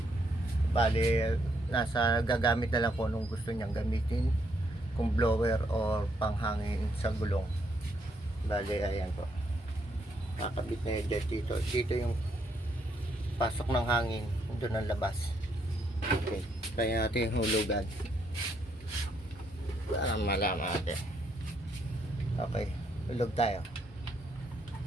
Bale, nasa gagamit na lang kung anong gusto niyang gamitin, kung blower or panghangin sa gulong. Bale, ayan po. Kakabit na yun dito. Dito yung pasok ng hangin. Doon ang labas. Okay. Kaya natin yung hulugan. Para malaman natin. Okay. Hulog tayo.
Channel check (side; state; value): both; normal; correlation 0.74